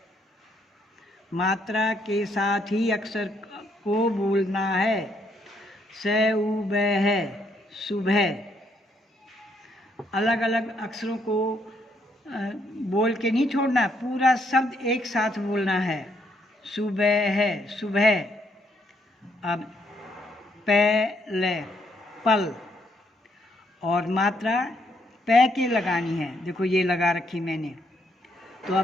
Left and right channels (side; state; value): both; normal; correlation 0.73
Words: मात्रा के साथ ही अक्षर को बोलना है, से उ ब है, सुबह। अलग अलग अक्षरों को बोल के नहीं छोड़ना, पूरा शब्द एक साथ बोलना है, सुबह है, सुबह। अब पहले, पल, और मात्रा पै के लगानी है, देखो ये लगा रखी मैंने। तो